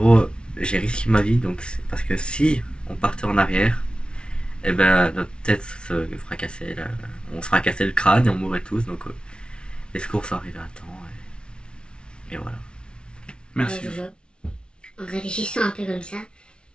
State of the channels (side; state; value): right; late; 0.056 ms